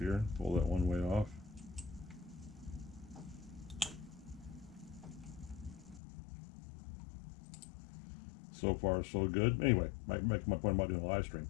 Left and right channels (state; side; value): drops out; right; at 6.0 s